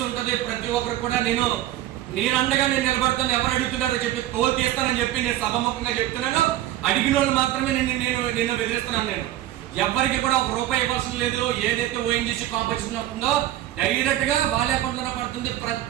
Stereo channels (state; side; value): quieter; left; 13.9 dB